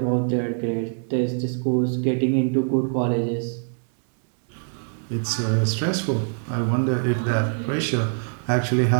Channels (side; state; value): left; silent; 63 dB below the other